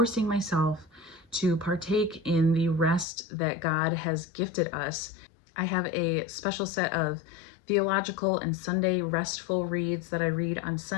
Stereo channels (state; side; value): drops out; right; at 3.1 s